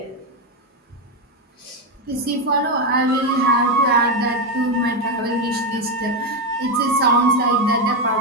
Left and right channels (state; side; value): normal; both; correlation 0.08